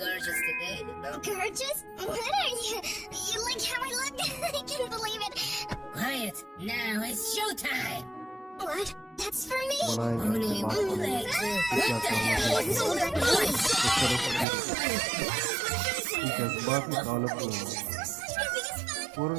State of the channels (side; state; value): left; drops out; at 14.5 s